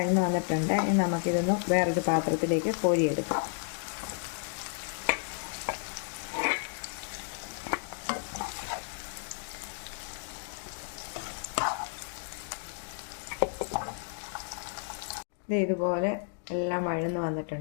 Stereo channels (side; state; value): right; silent; digital silence